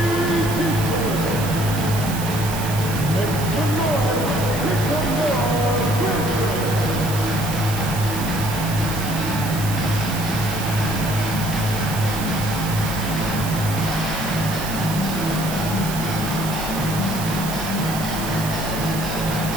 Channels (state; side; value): noise; right; hiss, 8 dB below the sound